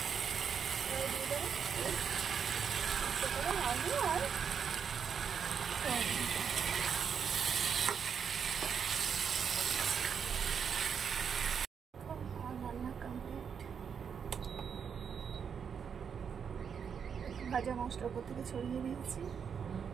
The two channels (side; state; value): left; quieter; 7.0 dB